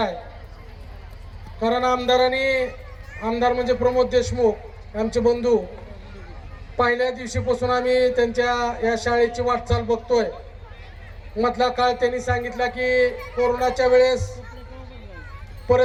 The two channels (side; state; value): both; identical; correlation 1.00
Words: आहे. कारण आमदार म्हणजे प्रमोद देशमुख आमचे बंधू, पहिल्या दिवशीपासून आम्ही त्यांच्या या शाळेची वाटचाल बघतोय. मधला काळ त्यांनी सांगितला की कोरोनाच्या वेळेस